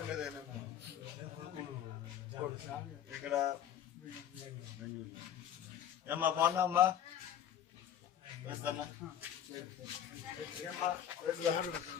ఇక్కడ ఏమ్మా బాగున్నా అమ్మా వేస్తానా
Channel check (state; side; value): quieter; right; 10.0 dB